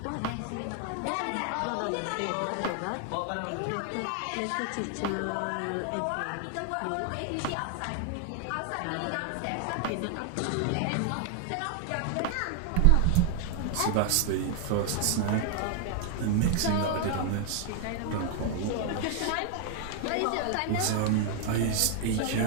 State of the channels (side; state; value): both; different; correlation 0.00